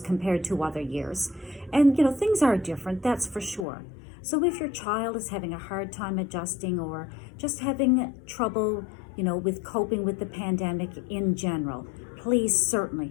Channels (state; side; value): drops out; right; at 3.7 s